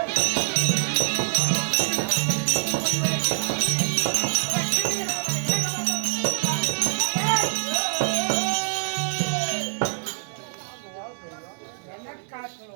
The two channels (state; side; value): silent; left; digital silence